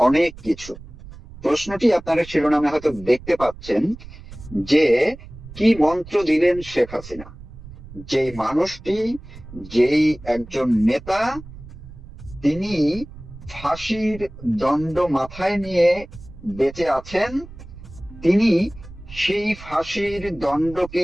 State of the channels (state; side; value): noise; right; rumble, 16 dB below the sound